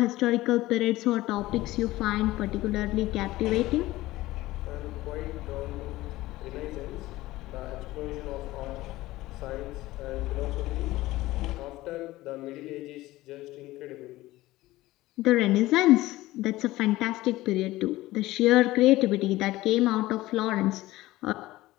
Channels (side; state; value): right; quieter; 17.5 dB